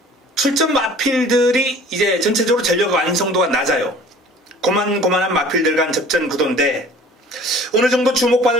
출전 마필들이 이제 전체적으로 전력 완성도가 낮아요. 고만고만한 마필들 간 접전 구도인데, 어느 정도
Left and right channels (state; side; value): normal; both; correlation 0.48